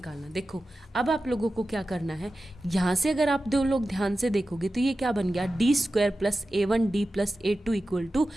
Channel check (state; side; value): normal; both; correlation 0.93